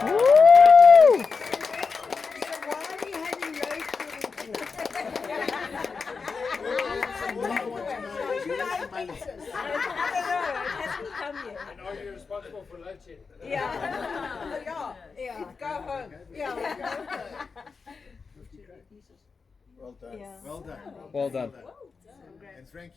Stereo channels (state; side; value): quieter; right; 4.9 dB